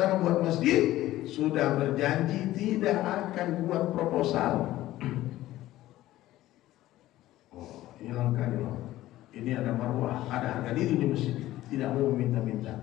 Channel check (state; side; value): quieter; right; 15.3 dB